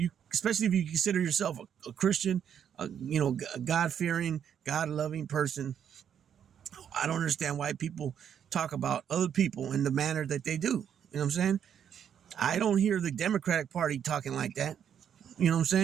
especially if you consider yourself a Christian, a God-fearing, God-loving person, I don't understand why people talk about other people in the manner that they do. You know what I'm saying? I don't hear the Democratic Party talking like that. You know what I'm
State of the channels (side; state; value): left; quieter; 8.7 dB